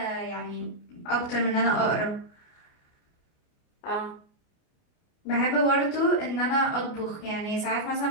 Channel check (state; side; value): late; right; 29 ms